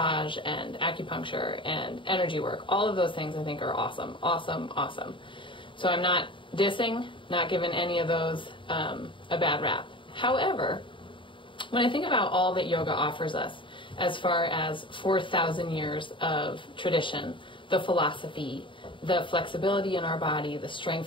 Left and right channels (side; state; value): right; late; 0.24 ms